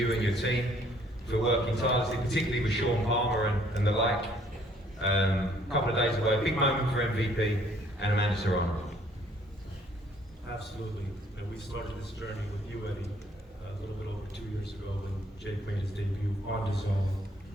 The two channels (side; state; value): both; normal; correlation 0.62